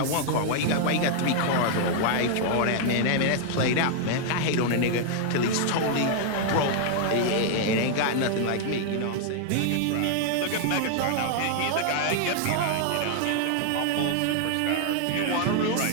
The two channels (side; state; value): both; different; correlation 0.00